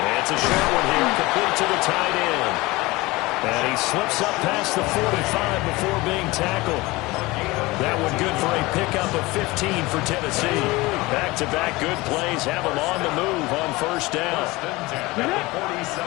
It's a short one here, complete to the tight end. And he slips up past the 45 before being tackled. That one good for a pickup of 15 for Tennessee. Back-to-back good plays have them on the move on first down.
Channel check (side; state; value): right; quieter; 21.5 dB